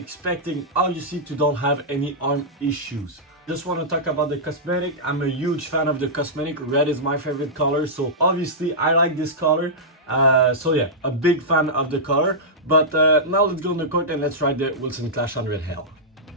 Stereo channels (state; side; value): normal; both; correlation -0.12